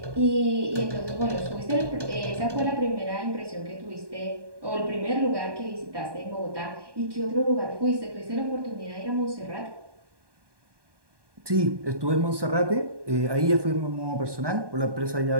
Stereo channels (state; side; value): late; left; 1.2 ms